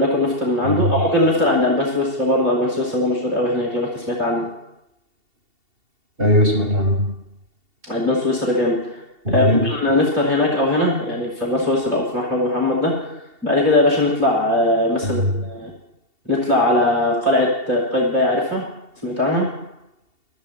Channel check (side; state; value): left; late; 2.7 ms